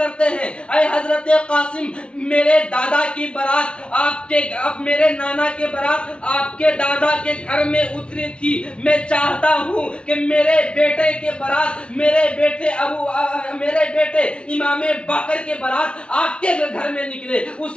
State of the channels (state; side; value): late; right; 0.058 ms